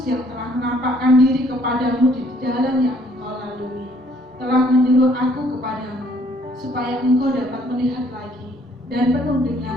yang telah menampakkan diri kepadamu di jalan yang engkau lalui, telah menyuruh aku kepadamu, supaya engkau dapat melihat lagi dan penuh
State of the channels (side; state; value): both; normal; correlation 0.63